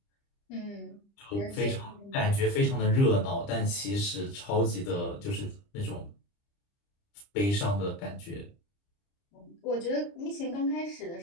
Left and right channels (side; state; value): right; late; 30 ms